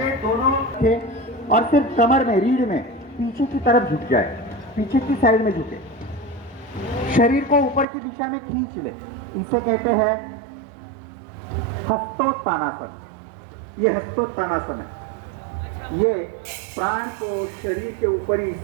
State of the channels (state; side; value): drops out; left; at 7.9 s